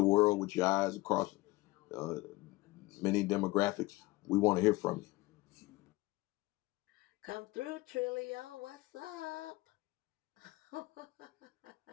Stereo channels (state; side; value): quieter; right; 20.4 dB